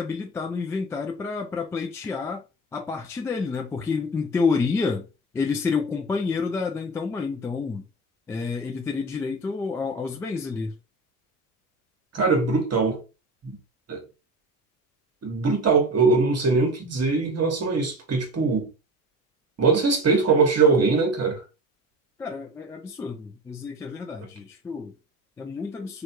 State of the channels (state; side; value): normal; both; correlation 0.32